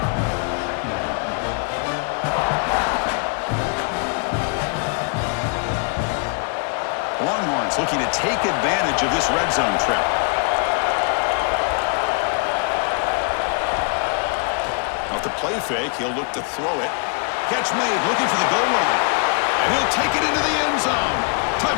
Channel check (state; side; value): quieter; right; 39.0 dB